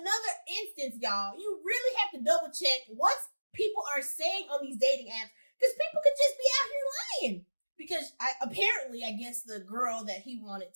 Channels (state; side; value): inverted; both; correlation -1.00